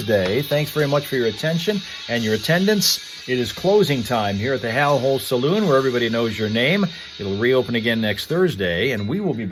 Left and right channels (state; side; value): identical; both; correlation 1.00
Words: Thanks very much for your attention and your attendance. It is closing time here at the Hal Hole Saloon, where everybody knows your name. It'll reopen again next Thursday, and we will be